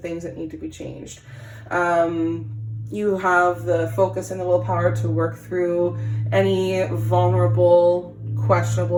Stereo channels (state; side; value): identical; both; correlation 1.00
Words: that need to be changed. You have the focus and the willpower to work through any vulnerable,